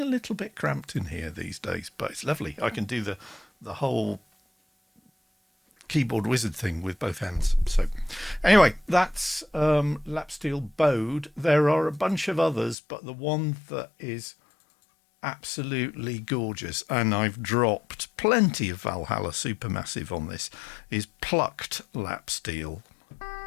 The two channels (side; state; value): right; drops out; at 12.8 s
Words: little bit cramped in here these days, but it's lovely. I can do the whole keyboard wizard thing with both hands. So anyway, that's lap steel bowed. There are a bunch of others, but the one that is absolutely gorgeous, and I've dropped plenty of Valhalla Supermassive on this, is plucked lap steel.